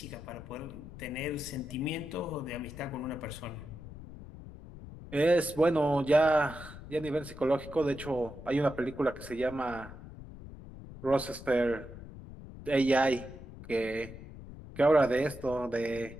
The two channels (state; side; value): noise; left; rumble, 14 dB below the sound